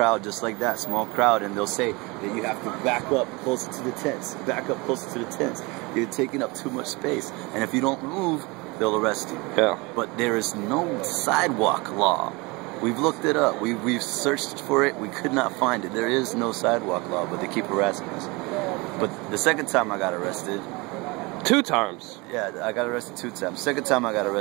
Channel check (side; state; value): left; quieter; 25.8 dB